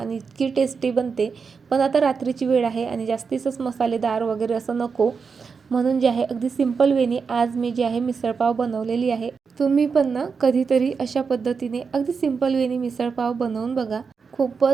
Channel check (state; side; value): quieter; left; 5.4 dB